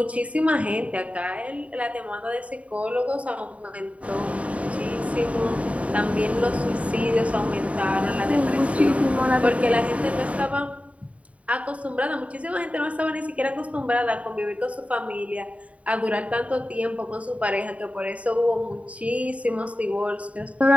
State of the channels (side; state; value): left; late; 0.066 ms